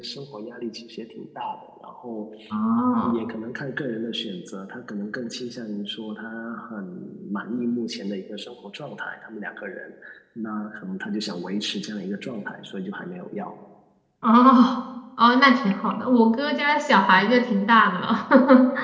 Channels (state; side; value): identical; both; correlation 1.00